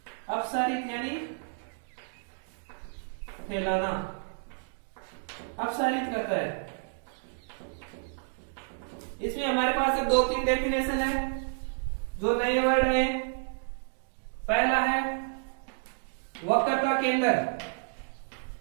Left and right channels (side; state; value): left; silent; digital silence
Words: अपसारित यानी फैलाना अपसारित करता है। इसमें हमारे पास 2-3 डेफिनेशन है जो नए वर्ड है। पहला है वक्रता केंद्र